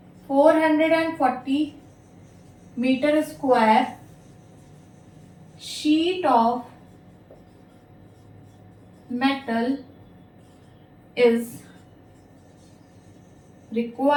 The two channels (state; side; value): identical; both; correlation 1.00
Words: 440 metre square sheet of metal is